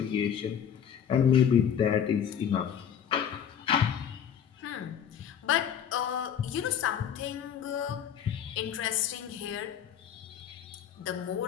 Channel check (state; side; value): quieter; right; 8.6 dB